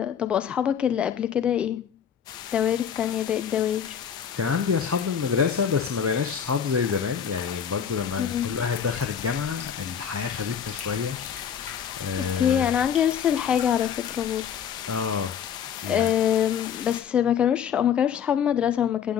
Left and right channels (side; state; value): right; quieter; 8.1 dB